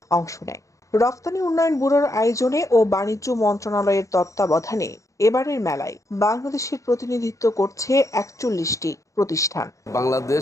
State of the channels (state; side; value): late; right; 0.15 ms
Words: অংশ নেয়। রফতানি উন্নয়ন ব্যুরোর আয়োজনে ও বাণিজ্য মন্ত্রণালয়ের তত্ত্বাবধানে এবারের মেলায় বাংলাদেশের প্রতিনিধিত্ব করছে ৪১টি প্রতিষ্ঠান।